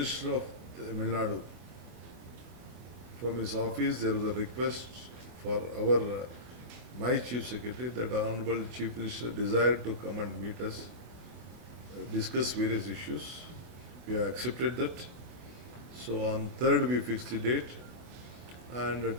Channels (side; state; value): left; late; 24 ms